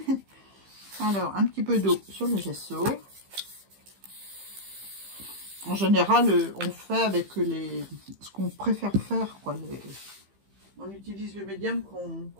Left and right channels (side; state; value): left; late; 15 ms